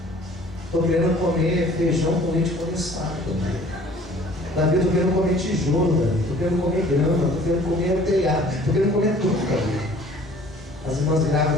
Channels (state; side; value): normal; both; correlation 0.52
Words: Estou querendo comer feijão com leite condensado. Davi, eu estou querendo comer tijolo, Davi. Estou querendo comer grama. Estou querendo comer telhado. Estou querendo comer tudo, Davi. As irmãs